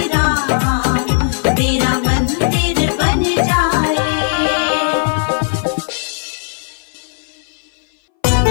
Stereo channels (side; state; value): right; silent; 62 dB below the other